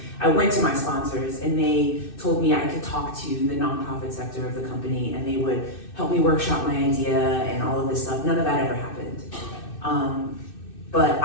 I went to my sponsors and they told me I could talk to the nonprofit sector of the company and they would help me workshop my idea and all of this stuff. None of that ever happened. But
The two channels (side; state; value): right; late; 2.6 ms